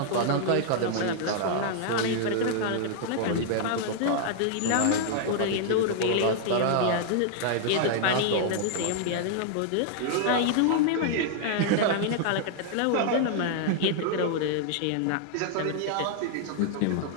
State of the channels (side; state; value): both; different; correlation 0.00